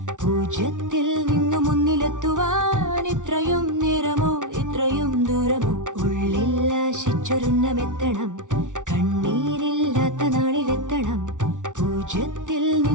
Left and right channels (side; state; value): left; late; 0.87 ms